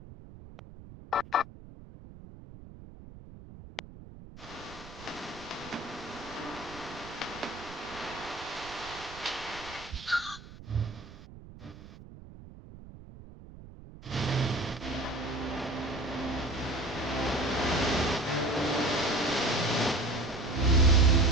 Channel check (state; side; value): noise; right; rumble, 16 dB below the sound